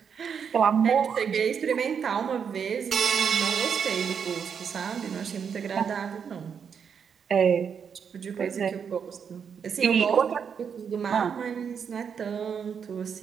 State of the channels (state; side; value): quieter; left; 7.0 dB